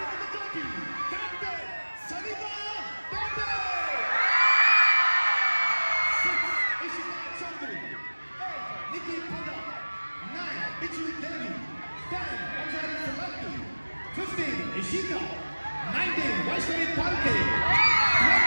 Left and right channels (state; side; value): inverted; both; correlation -1.00